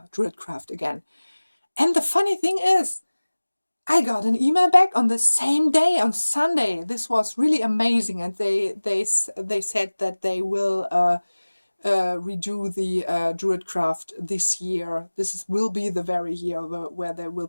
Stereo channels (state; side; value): inverted; both; correlation -1.00